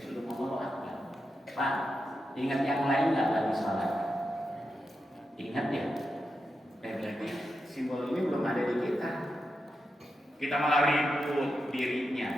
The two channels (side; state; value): both; normal; correlation 0.88